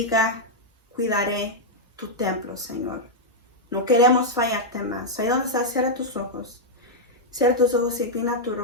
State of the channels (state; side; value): normal; both; correlation -0.04